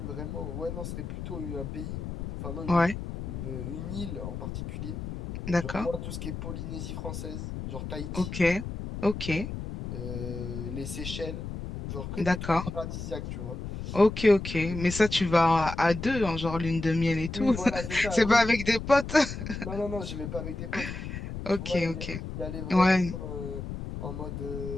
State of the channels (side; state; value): left; noise; rumble, 7 dB below the sound